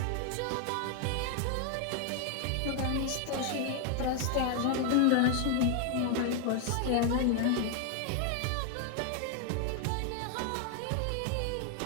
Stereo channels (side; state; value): both; different; correlation 0.00